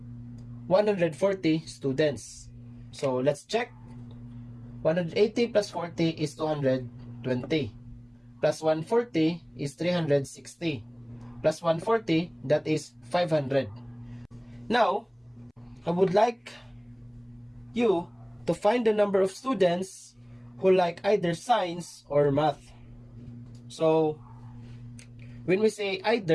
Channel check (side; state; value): both; identical; correlation 1.00